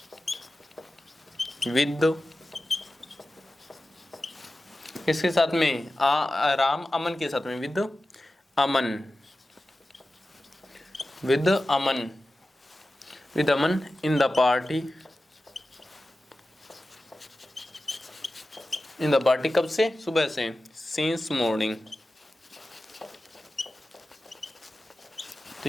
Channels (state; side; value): normal; both; correlation 0.94